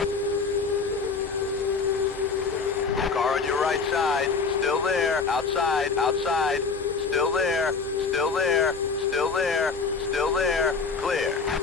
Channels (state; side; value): quieter; right; 4.8 dB